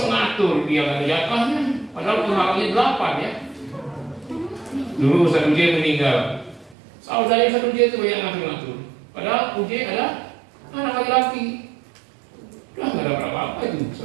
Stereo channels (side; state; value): left; drops out; at 6.8 s